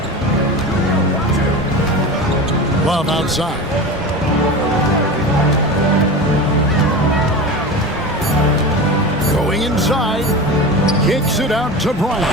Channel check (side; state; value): both; normal; correlation 0.28